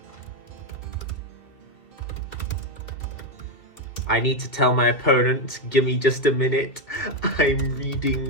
I need to tell my opponent, give me just a minute. I'm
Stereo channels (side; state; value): right; late; 2.7 ms